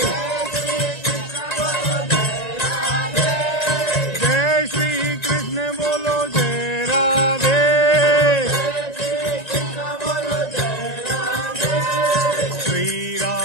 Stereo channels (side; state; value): right; late; 1.9 ms